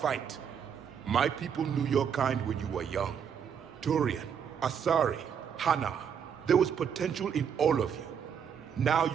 My people knew your kind when you were young. Turian, Asari, Hana. There was potential in all of you. Now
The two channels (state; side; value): quieter; left; 7.7 dB